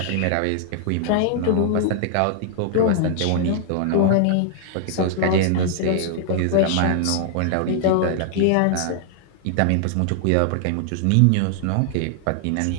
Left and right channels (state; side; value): different; both; correlation 0.00